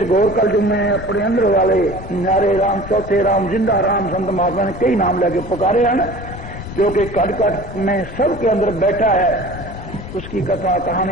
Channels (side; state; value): left; noise; rumble, 12 dB below the sound